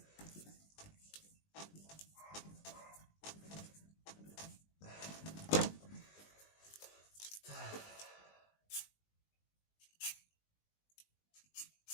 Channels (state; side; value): late; right; 20 ms